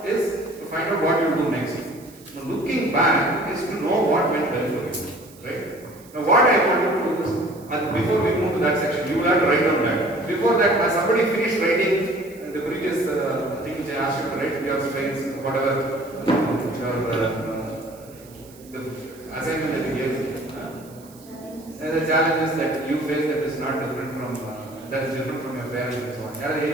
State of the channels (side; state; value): right; noise; hiss, 24 dB below the sound